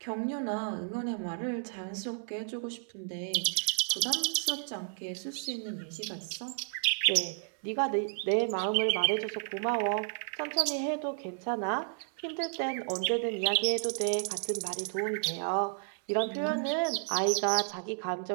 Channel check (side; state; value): left; silent; 56 dB below the other